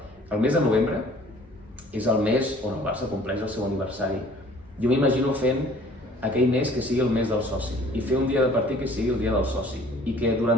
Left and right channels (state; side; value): normal; both; correlation 0.53